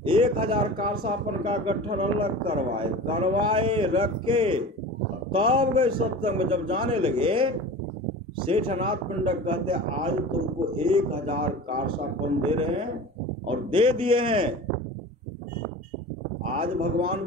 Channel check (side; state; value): both; normal; correlation 0.35